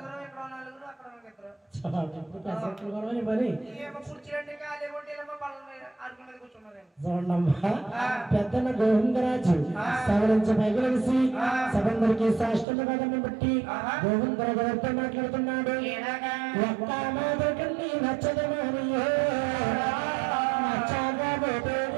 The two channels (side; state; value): left; drops out; at 12.7 s